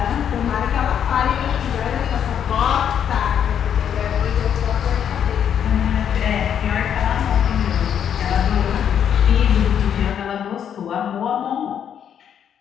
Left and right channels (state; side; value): quieter; right; 8.8 dB